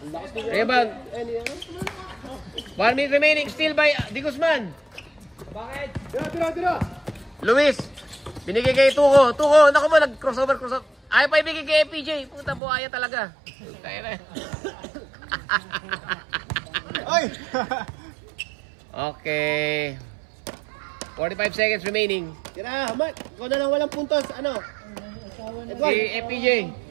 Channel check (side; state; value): left; drops out; at 12.6 s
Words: Rebound. 1 minute remaining, still by Di Guzman. Tira. Luis, binigay kay Tuko, naku mo, nag-crossover. Ayaw pa ibigay kay FPJ. Puta, buhaya talaga. Tayo na. Oy! Okay. 45 seconds remaining. Tira, Mark. Ikaw na lang walang puntos. Ano? Edward. Si FPJ.